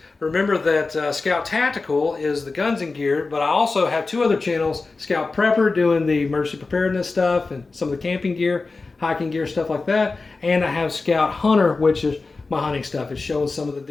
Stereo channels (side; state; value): right; quieter; 3.8 dB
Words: Remember that Scout Tactical is the guns and gear, but I also have two other channels. Scout Prepper doing the emergency preparedness stuff and some of the camping gear, hiking gear, stuff like that. And I have Scout Hunter, which is my hunting stuff. It's showing some of the